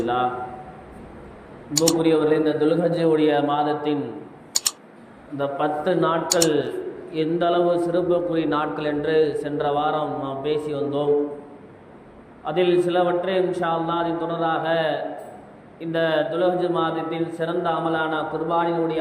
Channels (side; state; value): both; identical; correlation 1.00